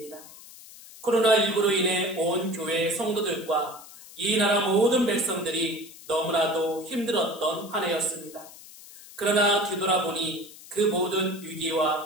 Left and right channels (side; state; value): left; noise; hiss, 18 dB below the sound